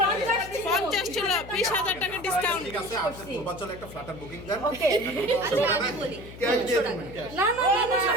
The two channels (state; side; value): noise; left; hum, 15 dB below the sound